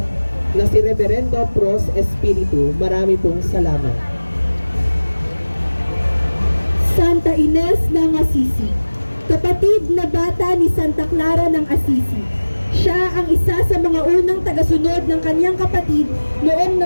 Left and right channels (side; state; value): both; inverted; correlation -1.00